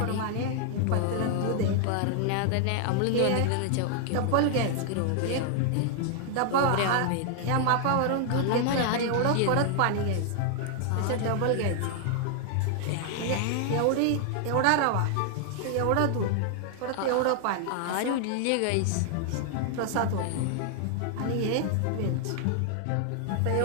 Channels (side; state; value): both; different; correlation 0.00